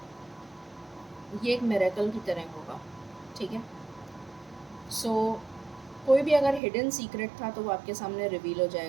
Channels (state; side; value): drops out; left; at 6.6 s